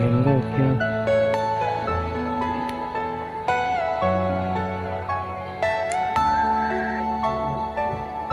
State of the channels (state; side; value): identical; both; correlation 1.00